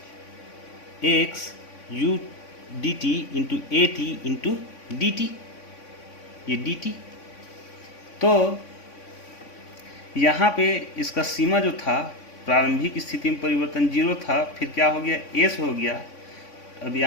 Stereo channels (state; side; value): late; right; 3.5 ms